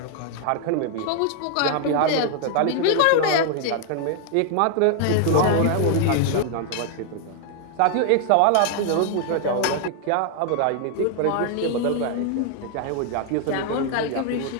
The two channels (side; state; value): both; different; correlation 0.00